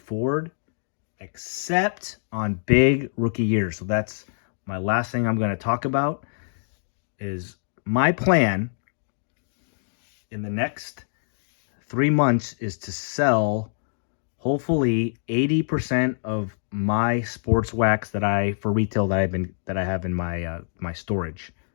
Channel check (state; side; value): silent; right; digital silence